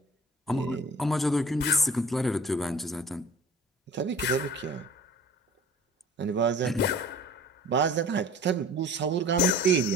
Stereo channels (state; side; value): normal; both; correlation 0.45